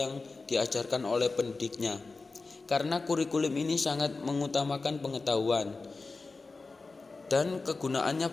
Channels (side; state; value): right; quieter; 3.8 dB